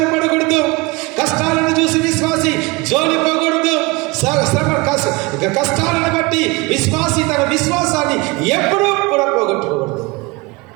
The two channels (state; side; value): quieter; left; 24.7 dB